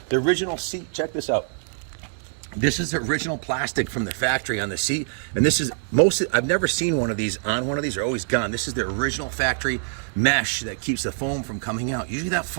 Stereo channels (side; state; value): left; silent; digital silence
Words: The original seat. Check this out. This is the original plastic from the factory on the seat, and this is I've never seen one of these on one of these. They're always gone. This is the original factory mesh that keeps the foam from coming out. Usually that